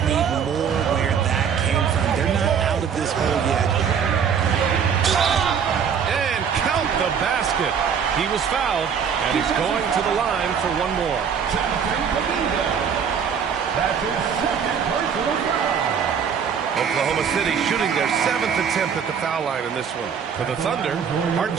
more where that came from. They're not out of this hole yet. And count the basket. He was fouled, and he's going to the line for one more. That's his second personal foul. Oklahoma City shooting their 7th attempt at the foul line in this one. For the Thunder,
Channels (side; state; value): left; quieter; 7.2 dB